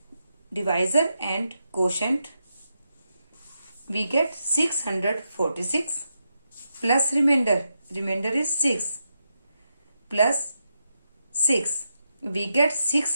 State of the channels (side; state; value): both; inverted; correlation -0.85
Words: divisor and quotient. We get 646 plus remainder. Remainder is 6 plus 6. We get